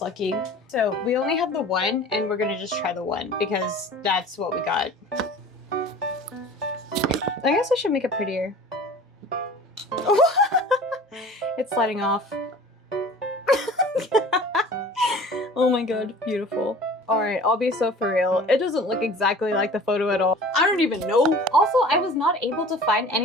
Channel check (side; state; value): both; normal; correlation 0.43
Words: lucky. So we only have the one, and we're gonna just try the one because that's what we got. I guess I should make it prettier. It's sliding off. Oh my god, beautiful. Alright, I'll be so for real. It doesn't look exactly like the photo at all. I don't even know. Also, I was not able to find